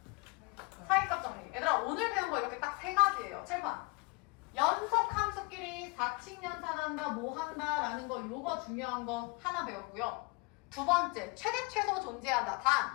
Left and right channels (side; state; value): right; quieter; 27.4 dB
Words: 사이값 정리. 얘들아 오늘 배운 거 이렇게 딱 3가지예요. 칠판. 연속 함수끼리 사칙연산한다 뭐 한다 라는 거 요거 중요한 거 하나 배웠고요. 두 번째 최대 최소 존재한다.